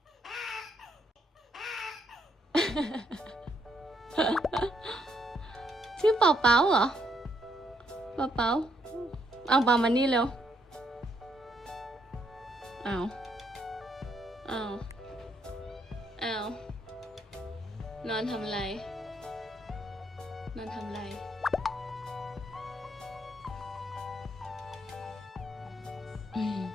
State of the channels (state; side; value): normal; both; correlation 0.74